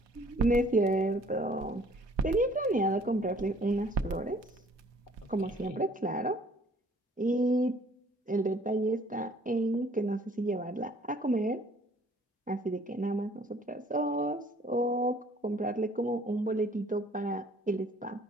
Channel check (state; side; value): normal; both; correlation 0.57